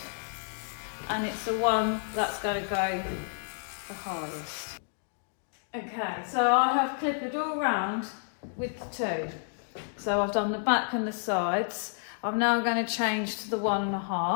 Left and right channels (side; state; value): right; silent; digital silence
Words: and it's the one that's going to go the highest. Okay, so I have clipped all round with the 2. So I've done the back and the sides. I'm now going to change to the